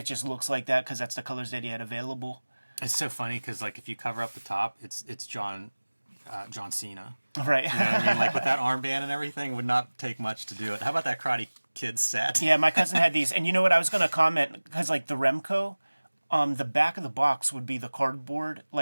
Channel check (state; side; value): inverted; both; correlation -1.00